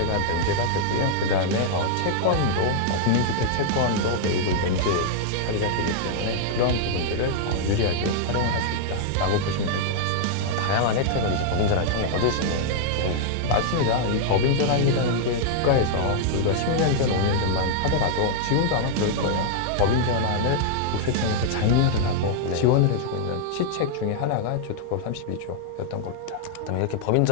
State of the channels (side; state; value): both; different; correlation -0.01